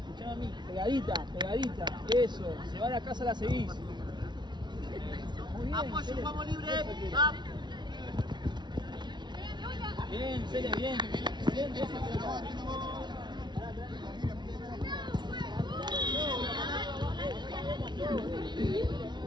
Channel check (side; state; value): left; late; 0.21 ms